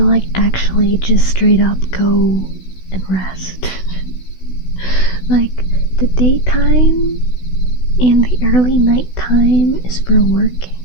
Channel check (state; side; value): late; right; 16 ms